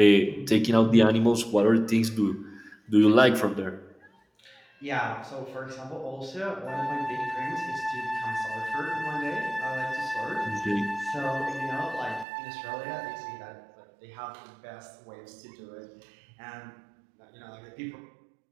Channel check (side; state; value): left; drops out; at 12.2 s